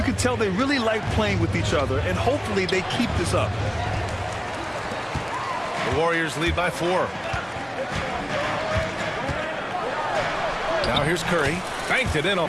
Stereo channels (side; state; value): both; identical; correlation 1.00